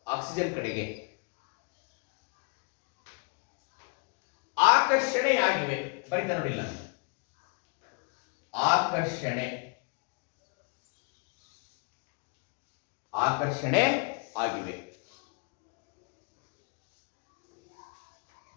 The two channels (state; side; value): quieter; right; 36.1 dB